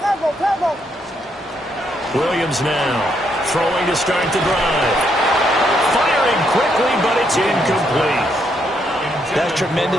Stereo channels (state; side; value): normal; both; correlation 0.75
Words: Tackle. Williams now throwing to start the drive. Firing quickly, but it's incomplete. That's